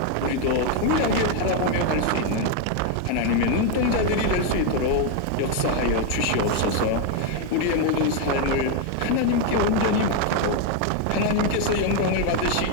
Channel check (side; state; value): both; different; correlation 0.01